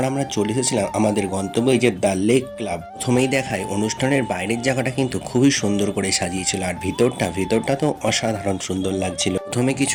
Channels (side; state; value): both; identical; correlation 1.00